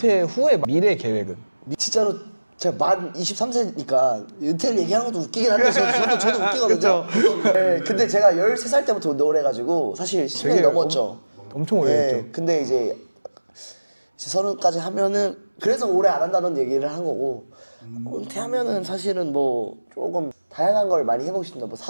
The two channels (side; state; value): both; inverted; correlation -1.00